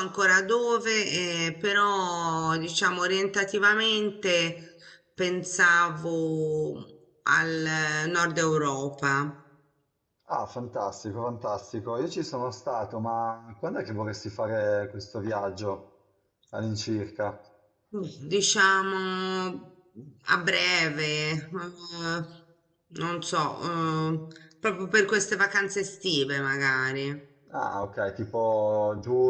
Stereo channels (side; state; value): both; identical; correlation 1.00